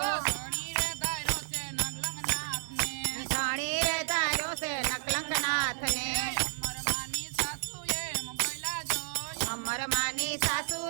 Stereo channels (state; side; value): silent; left; digital silence